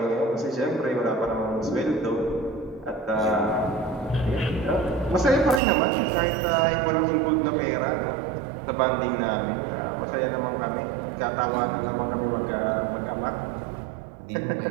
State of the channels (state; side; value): drops out; left; at 5.6 s